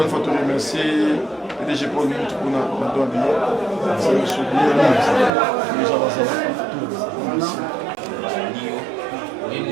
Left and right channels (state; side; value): drops out; left; at 5.3 s